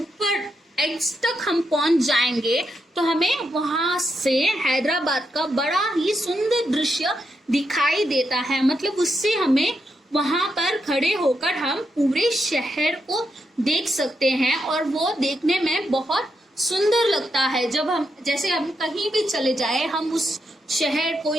एज तक हम पहुंच जाएंगे तो हमें वहां से हैदराबाद का बड़ा ही सुंदर दृश्य दिखाई देता है। मतलब उससे हमें वहां पर खड़े होकर हम पूरे शहर को देख सकते हैं और वो देखने में बहुत सुंदर लगता है। जब हम, जैसे हम कहीं भी चले जाए, हम उस शहर को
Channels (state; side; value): normal; both; correlation 0.83